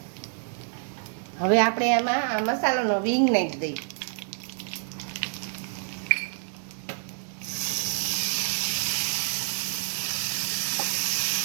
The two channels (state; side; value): silent; left; 60 dB below the other